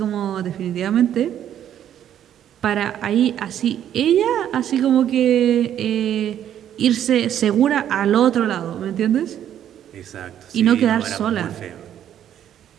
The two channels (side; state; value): left; quieter; 10.4 dB